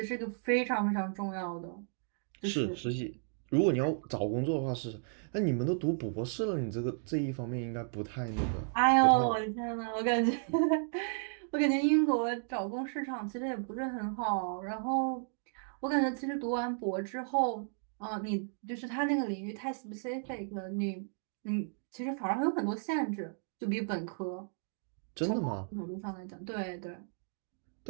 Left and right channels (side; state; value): left; silent; digital silence